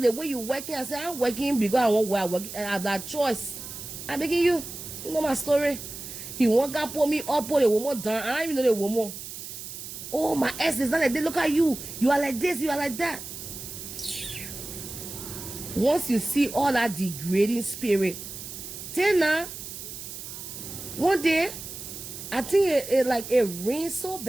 way you working. I said, I'm working because I want where I work. I have that choice. I'm making you know my story. He won't come pull me up, pull the woman down. I don't even know the woman. Oh, my ass is not like this. Look at you. You are like this, you are like that. Once you see all that degrading spirit, then now, one day, I think it rained so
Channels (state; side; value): noise; right; hiss, 10 dB below the sound